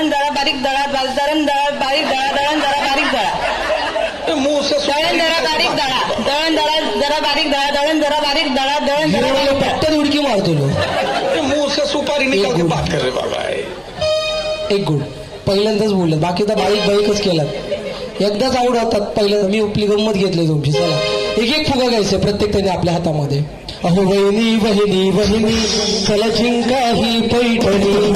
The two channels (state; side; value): identical; both; correlation 1.00